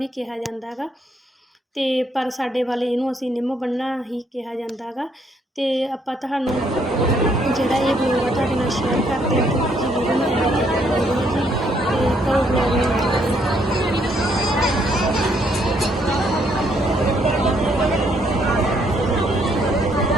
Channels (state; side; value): normal; both; correlation 0.70